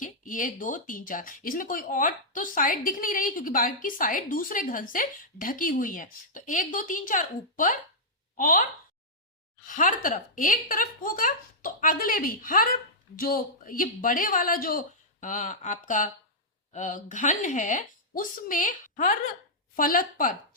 ये दो तीन चार, इसमें कोई और तो साइड दिख नहीं रही क्योंकि बाकी साइड दूसरे घन से ढकी हुई है। तो एक दो तीन चार ऊपर, और हर तरफ एक तरफ होगा तो अगले भी हर, जो ये बड़े वाला जो आपका घन है उसमें हर फलक पर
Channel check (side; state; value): both; normal; correlation -0.10